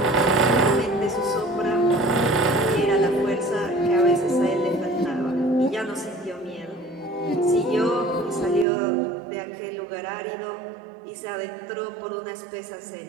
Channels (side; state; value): left; drops out; at 8.7 s